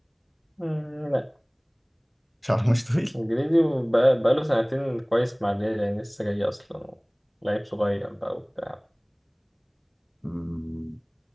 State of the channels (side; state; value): both; identical; correlation 1.00